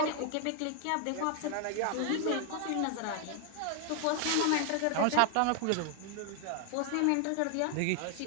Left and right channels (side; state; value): both; different; correlation 0.00